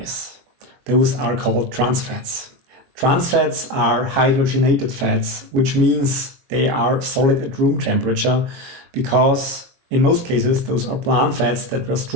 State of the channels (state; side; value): late; left; 22 ms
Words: Those are called trans fats. Trans fats are hydrogenated fats, which means they are solid at room temperature, because in most cases those are plant fats that were